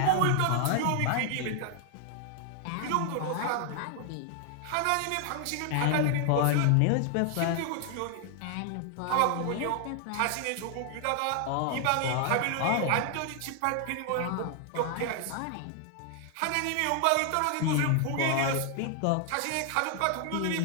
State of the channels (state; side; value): different; both; correlation 0.00